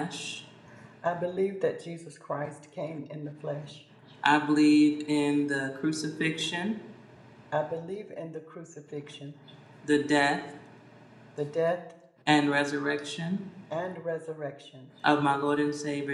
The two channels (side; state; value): both; identical; correlation 1.00